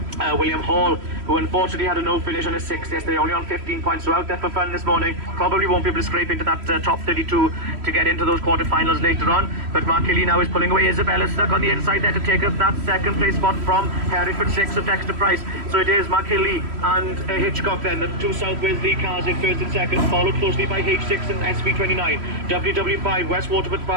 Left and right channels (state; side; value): late; left; 3.1 ms